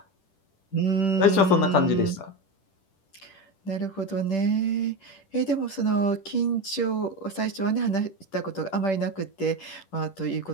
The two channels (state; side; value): late; right; 10 ms